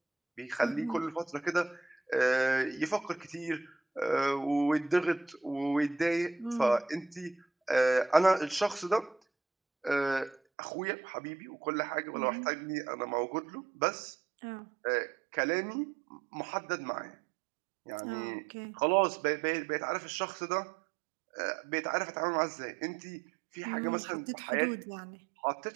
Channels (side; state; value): left; drops out; at 10.4 s